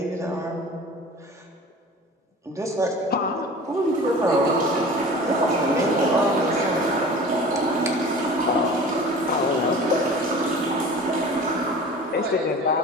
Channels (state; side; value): normal; both; correlation 0.40